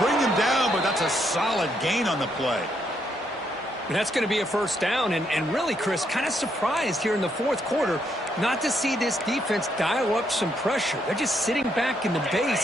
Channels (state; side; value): normal; both; correlation 0.75